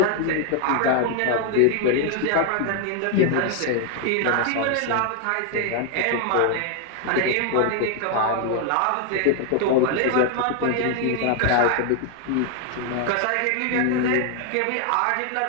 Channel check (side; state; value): both; different; correlation 0.00